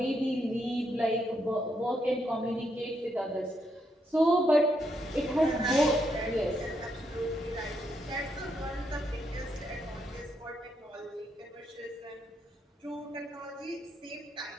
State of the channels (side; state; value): both; normal; correlation 0.78